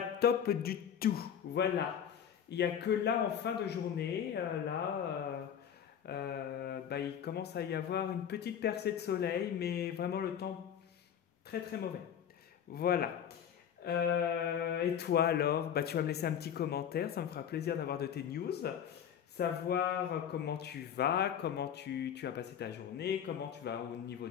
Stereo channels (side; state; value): right; quieter; 8.8 dB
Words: top du tout. Voilà, il n'y a que là en fin de journée, il commence à y avoir une petite percée de soleil, mais vraiment le temps très très mauvais. Voilà. Et toi alors, tu vas me laisser un petit commentaire, ça me fera plaisir d'avoir de tes news, savoir comment tu vas, comment tu as passé ta journée, comment tu vas au niveau